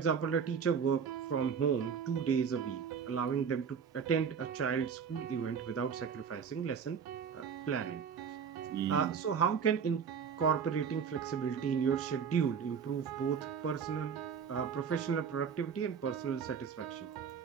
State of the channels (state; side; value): quieter; left; 6.7 dB